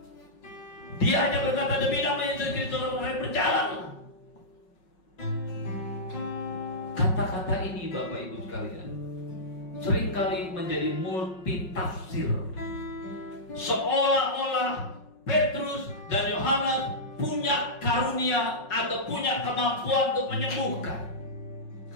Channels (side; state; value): right; late; 5.4 ms